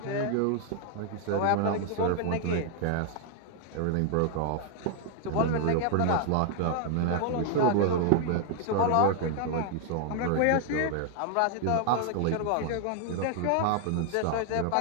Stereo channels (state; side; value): different; both; correlation 0.00